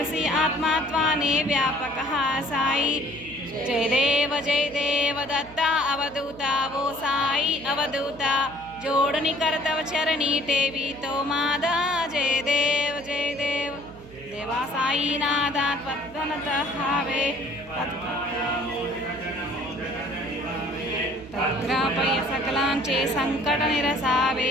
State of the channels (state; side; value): noise; right; hum, 19 dB below the sound